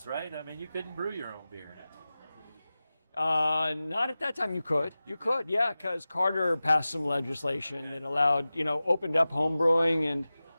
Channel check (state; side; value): inverted; both; correlation -0.96